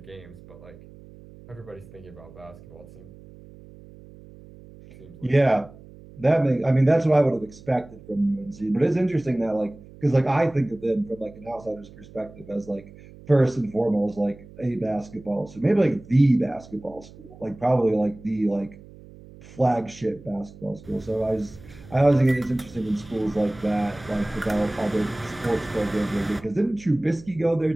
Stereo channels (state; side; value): noise; right; hum, 20 dB below the sound